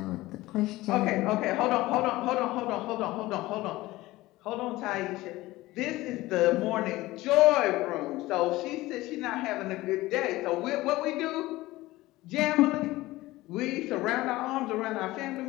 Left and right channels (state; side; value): quieter; right; 18.4 dB